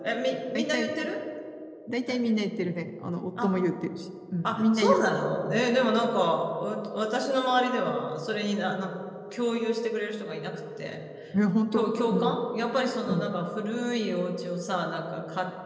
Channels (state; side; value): identical; both; correlation 1.00